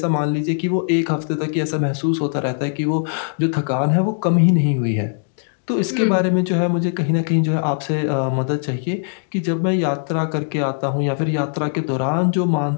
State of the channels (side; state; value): right; silent; digital silence